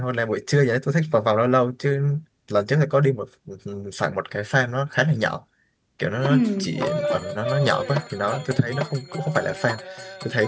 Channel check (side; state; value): both; identical; correlation 1.00